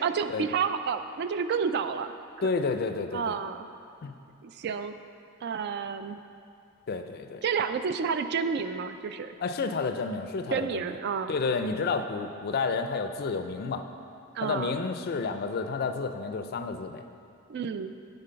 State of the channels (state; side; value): normal; both; correlation -0.07